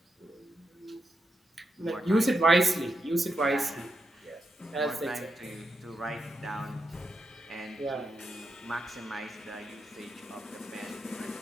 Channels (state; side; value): normal; both; correlation 0.85